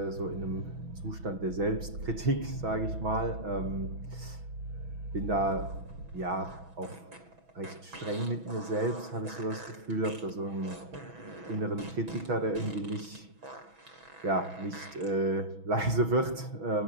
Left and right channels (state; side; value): late; left; 6.1 ms